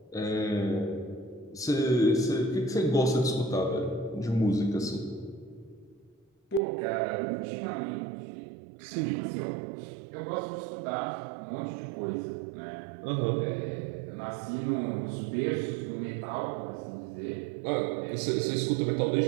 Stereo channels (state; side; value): drops out; left; at 6.6 s